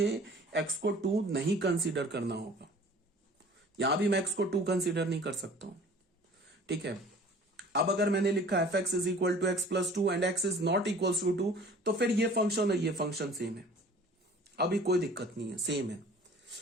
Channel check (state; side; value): normal; both; correlation 0.47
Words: एक्स को टू नहीं कंसीडर करना होगा, यहां भी मैं एक्स को टू कंसीडर नहीं कर सकता हूं, ठीक है। अब अगर मैंने लिखा f x is equal to x plus two and x is not equal to two, तो फिर ये फंक्शन और ये फंक्शन सेम है, अभी कोई दिक्कत नहीं है, सेम है।